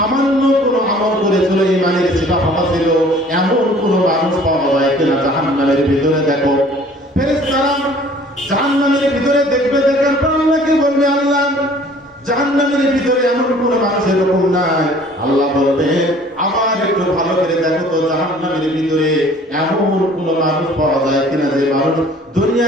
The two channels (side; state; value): both; normal; correlation 0.52